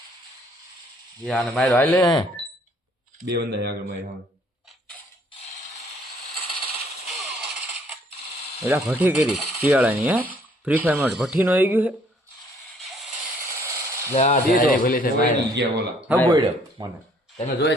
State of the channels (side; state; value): both; normal; correlation 0.62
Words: યાર ને મારો હાલે બે બંદા આગળ મારી હા એટલે ભઠ્ઠી કરી શિયાળાની હે ફ્રી ફાયરમાં ભઠ્ઠીનો આવી ગયું છે ભલે છે મારી ગયા ઓલા હા બોલ્યો મને તમે જોઈ